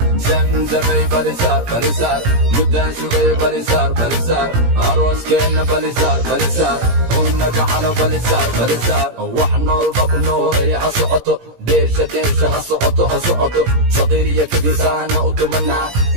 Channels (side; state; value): left; late; 17 ms